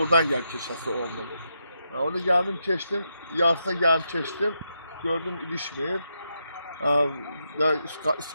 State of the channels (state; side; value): inverted; both; correlation -0.83